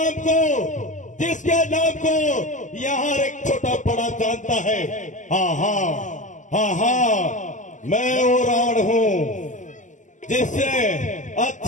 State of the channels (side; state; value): right; late; 0.36 ms